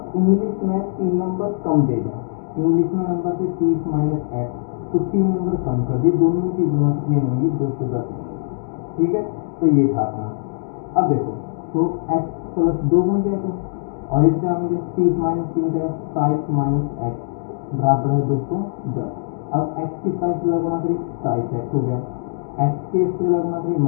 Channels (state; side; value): silent; right; digital silence